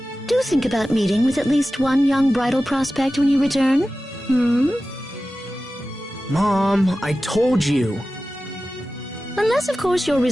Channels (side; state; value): both; normal; correlation 0.95